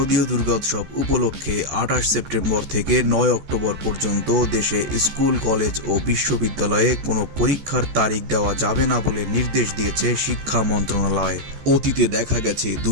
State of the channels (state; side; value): late; left; 14 ms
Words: দুর্গোৎসব উপলক্ষে 28 সেপ্টেম্বর থেকে 9 অক্টোবর পর্যন্ত দেশে স্কুল, কলেজ ও বিশ্ববিদ্যালয়ে কোনো পরীক্ষার তারিখ দেওয়া যাবে না বলে নির্দেশ দিয়েছে শিক্ষা মন্ত্রণালয়। অতীতে দেখা গেছে